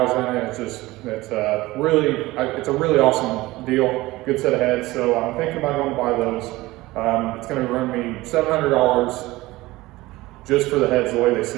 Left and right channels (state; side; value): quieter; left; 19.3 dB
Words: in it. It's a really awesome deal. Good set of heads. So I'm thinking about going to buy those. It's going to run me $700 just for the heads the way they